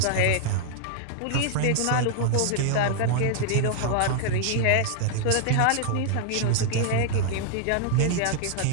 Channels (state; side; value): different; both; correlation -0.01